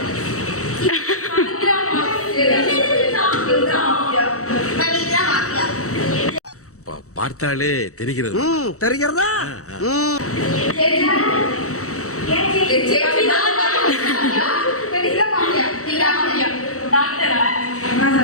பார்த்தாலே தெரிகிறது. தெரிகிறதா?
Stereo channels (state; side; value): late; right; 0.65 ms